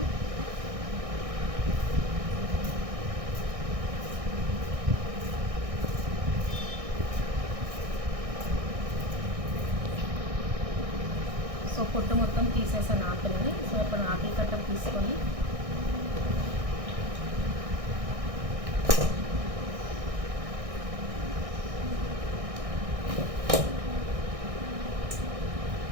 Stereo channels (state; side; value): late; left; 1.6 ms